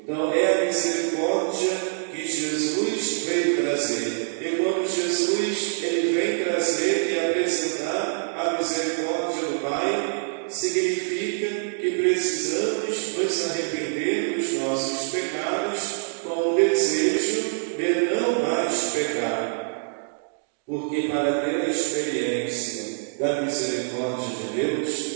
Então é a misericórdia que Jesus veio trazer. E quando Jesus ele vem trazer e apresentar a misericórdia do Pai, significa que precisamos nos arrepender dos nossos pecados com o desejo de não mais pecar. Porque para ter a experiência da misericórdia de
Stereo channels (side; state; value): left; silent; digital silence